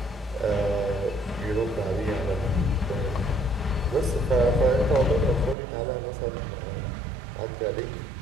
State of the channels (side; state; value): left; drops out; at 5.6 s